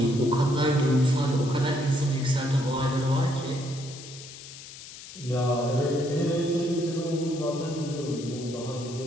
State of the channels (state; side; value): noise; left; hiss, 15 dB below the sound